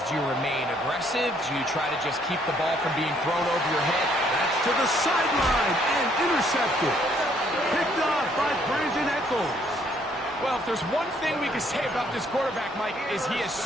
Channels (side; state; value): both; normal; correlation 0.66